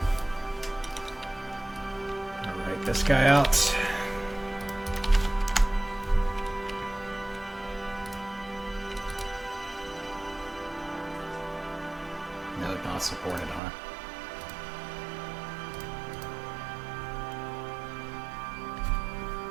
I'll write this guy out. No, not supported, huh?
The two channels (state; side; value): drops out; left; at 13.6 s